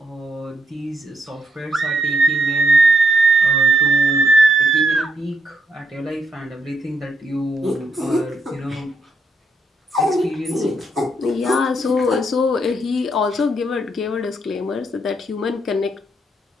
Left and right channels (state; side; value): normal; both; correlation 0.77